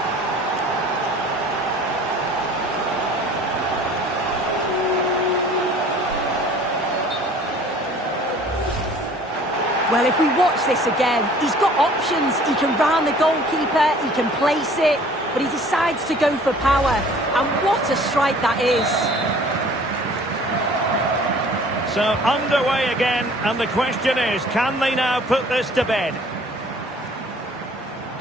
Well, if we watch this again, he's got options. He can round the goalkeeper, he can place it, but he decides to go for power. And what a strike that is. So, underway again, and the question is, can they now put this to bed?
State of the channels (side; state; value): both; normal; correlation 0.51